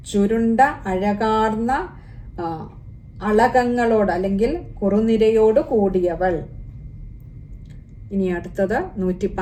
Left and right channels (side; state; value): both; identical; correlation 1.00